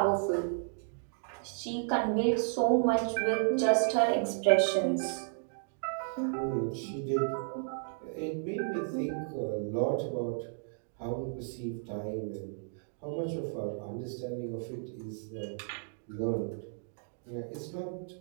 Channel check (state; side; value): silent; left; digital silence